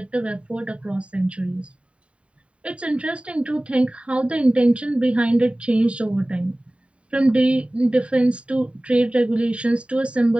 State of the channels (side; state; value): left; late; 0.061 ms